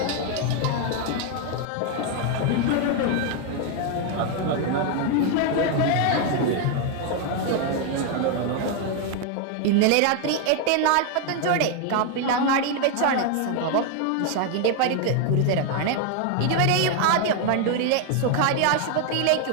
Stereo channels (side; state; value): both; different; correlation 0.01